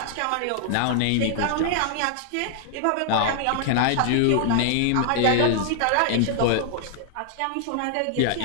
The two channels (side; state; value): both; different; correlation -0.01